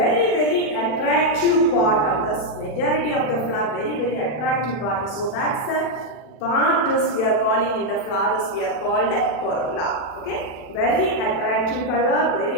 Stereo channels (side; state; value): right; late; 40 ms